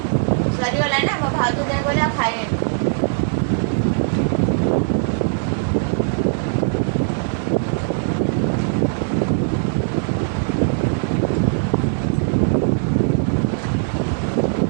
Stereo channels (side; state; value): left; silent; digital silence